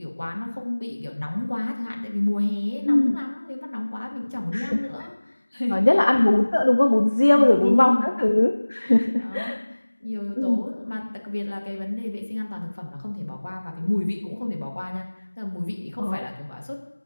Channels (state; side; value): inverted; both; correlation -1.00